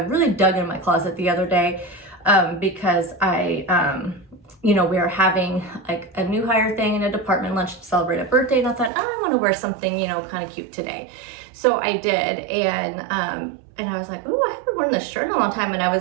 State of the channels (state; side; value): drops out; left; at 8.9 s